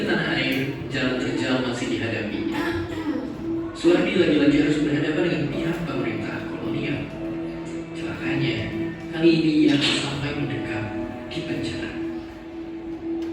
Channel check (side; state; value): both; identical; correlation 1.00